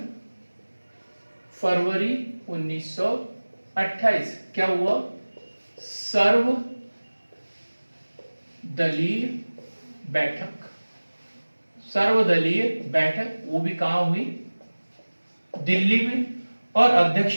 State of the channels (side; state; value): both; inverted; correlation -1.00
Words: फरवरी 1928 क्या हुआ? सर्वदलीय बैठक, वो भी कहां हुई? दिल्ली में। और